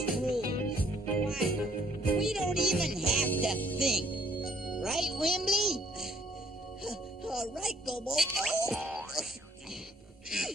rules. Why, we don't even have to think. Right, Wimbley? All right, Gobo. Oh.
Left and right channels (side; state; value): both; normal; correlation 0.62